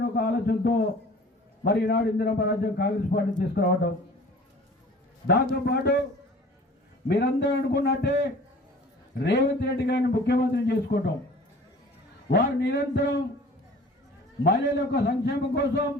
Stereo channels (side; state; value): both; normal; correlation 0.46